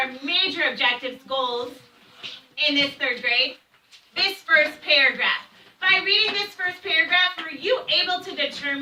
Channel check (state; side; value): identical; both; correlation 1.00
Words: major objectives, goals in this third grade, this first paragraph. By reading this first paragraph, were you able to